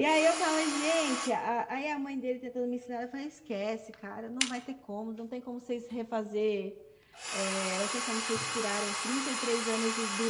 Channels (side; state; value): both; identical; correlation 1.00